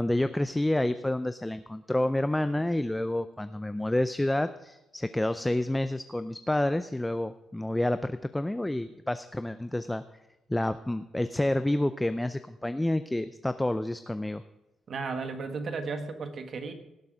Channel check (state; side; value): normal; both; correlation 0.98